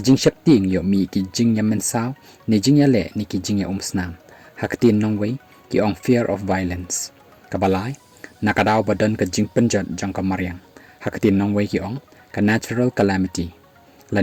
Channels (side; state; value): both; identical; correlation 1.00